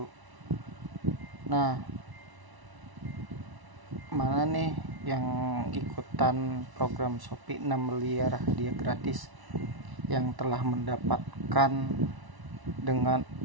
Nah, mana nih yang ikutan program Shopee 6 miliar hadiah gratis yang telah mendapatkan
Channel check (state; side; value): late; left; 1.0 ms